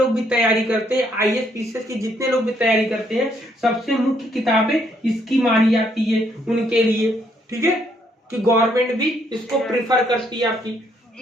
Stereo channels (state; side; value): normal; both; correlation 0.70